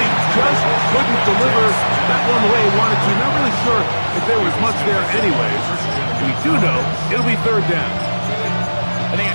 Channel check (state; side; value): inverted; both; correlation -1.00